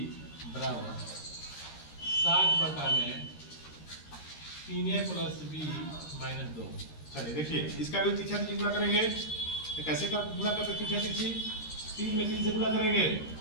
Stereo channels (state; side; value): late; right; 13 ms